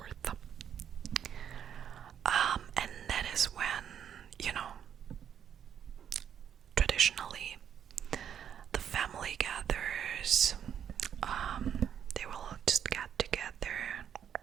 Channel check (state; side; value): quieter; left; 8.8 dB